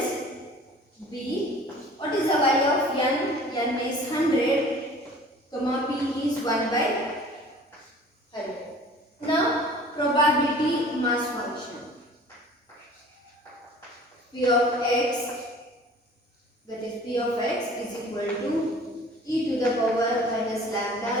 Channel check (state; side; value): normal; both; correlation 0.47